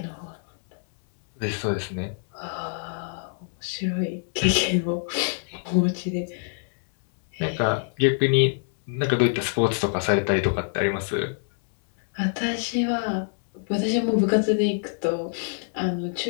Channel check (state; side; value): silent; right; 61 dB below the other